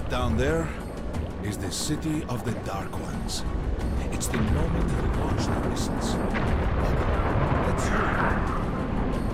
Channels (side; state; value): both; identical; correlation 1.00